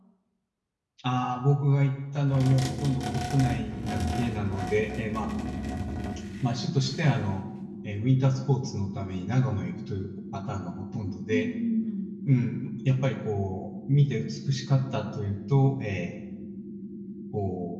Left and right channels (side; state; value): both; identical; correlation 1.00